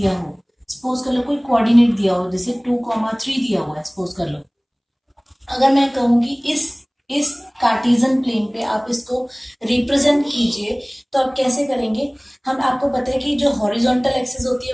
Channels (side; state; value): both; identical; correlation 1.00